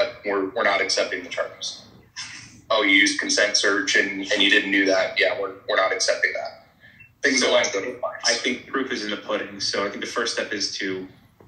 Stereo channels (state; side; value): identical; both; correlation 1.00